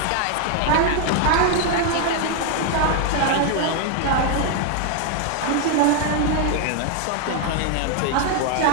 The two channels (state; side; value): different; both; correlation 0.00